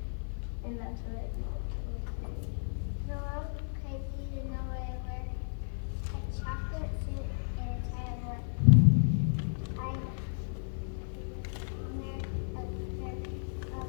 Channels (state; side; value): silent; right; 55 dB below the other